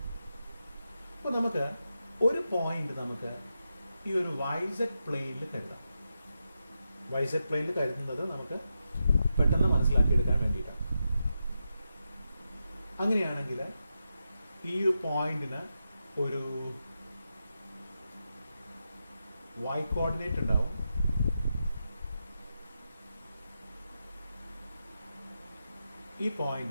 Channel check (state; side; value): inverted; both; correlation -0.87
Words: അപ്പോൾ നമുക്ക് ഒരു പോയിന്റ് നമുക്ക് ഈ ഒരു വൈസെഡ് പ്ലെയിനിൽ കരുതാം. വൈസെഡ് പ്ലെയിനിൽ കരുതുന്നത് നമുക്ക് പെട്ടെന്ന് മനസ്സിലാക്കിയെടുക്കാൻ വേണ്ടിയിട്ടാണ്. അങ്ങനെയാണെങ്കിൽ ഈ പോയിന്റിന് ഒരു y കോർഡിനേറ്റ് ഉണ്ടാവും. ഈ